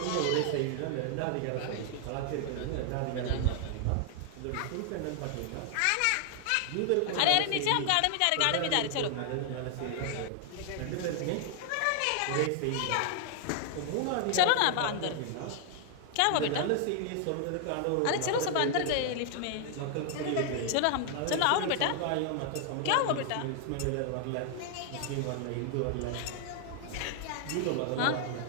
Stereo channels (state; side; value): different; both; correlation 0.00